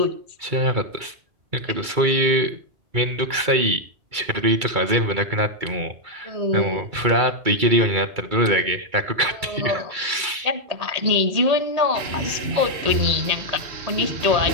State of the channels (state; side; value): late; left; 2.3 ms